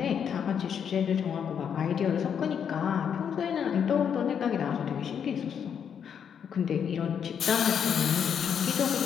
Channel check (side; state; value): right; quieter; 7.8 dB